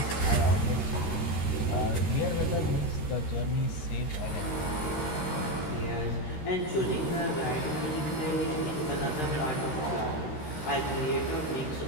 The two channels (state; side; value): late; right; 13 ms